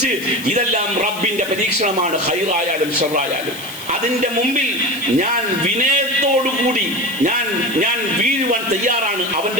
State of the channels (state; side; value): noise; left; hiss, 14 dB below the sound